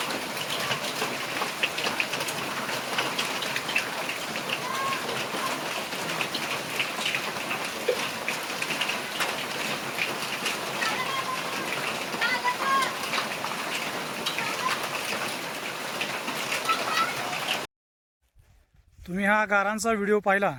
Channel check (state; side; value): identical; both; correlation 1.00